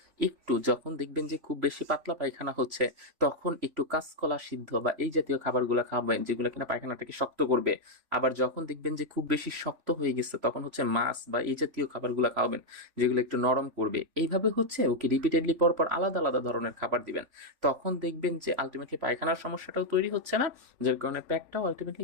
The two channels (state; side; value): late; left; 3.4 ms